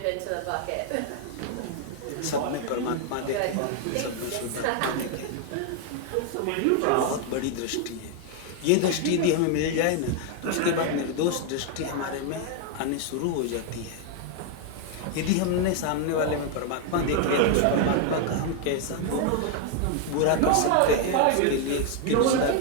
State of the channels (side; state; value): both; different; correlation 0.00